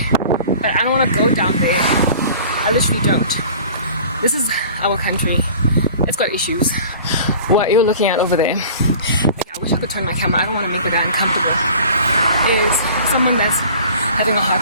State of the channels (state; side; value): inverted; both; correlation -0.44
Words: but I don't want to go down there. I literally don't. This is our country. It's got issues. What you're looking at over there, okay, I wish I could turn my camera. I don't want to make it that uncomfortable. Is someone that's having a